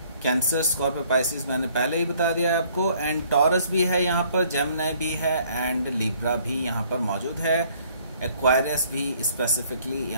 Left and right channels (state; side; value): inverted; both; correlation -0.61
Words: Cancer, Scorpio, Pisces मैंने पहले ही बता दिया है आपको। एंड टॉरस भी है यहाँ पर, जेमिनी भी है एंड लिब्रा भी यहाँ पर मौजूद है। एक्वारियस भी स्पेसिफिकली